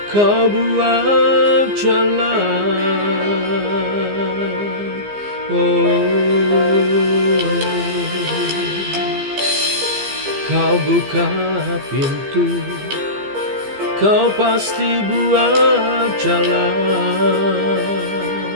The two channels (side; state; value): left; late; 15 ms